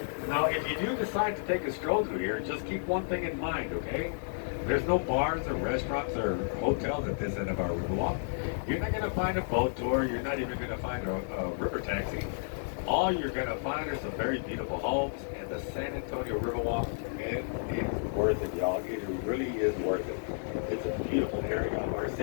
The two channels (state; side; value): silent; right; 57 dB below the other